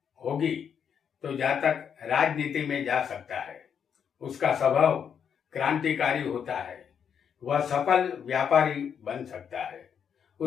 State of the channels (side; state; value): right; quieter; 7.7 dB